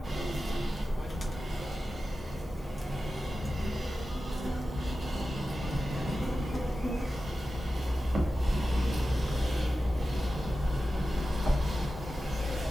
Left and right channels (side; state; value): both; normal; correlation 0.93